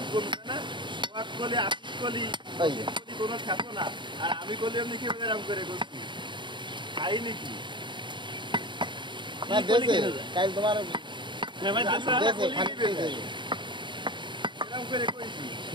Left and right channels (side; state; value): left; late; 0.23 ms